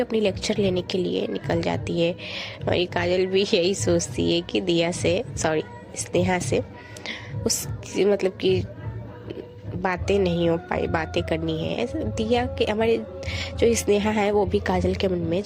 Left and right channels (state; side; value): identical; both; correlation 1.00